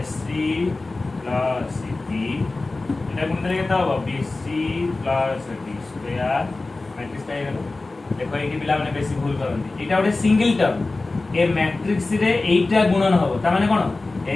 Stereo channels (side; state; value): right; quieter; 3.3 dB